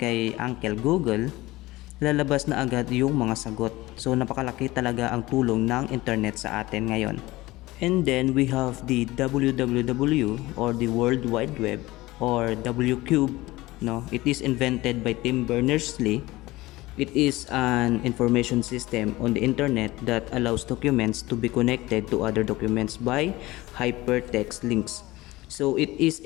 Uncle Google, lalabas na agad yung mga sagot. So napakalaki talaga ang tulong ng internet sa atin ngayon. And then we have the WWW or the World Wide Web or WCube. No, it is invented by Tim Berners-Lee. It is an information system on the internet that allows documents to be connected to other documents by hypertext links. So it is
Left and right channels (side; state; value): right; quieter; 19.2 dB